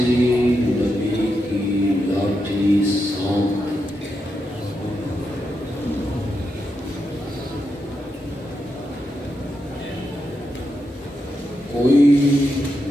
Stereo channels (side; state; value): both; normal; correlation 0.85